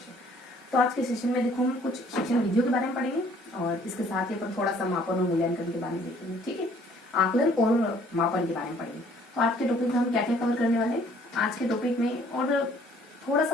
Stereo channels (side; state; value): both; normal; correlation 0.59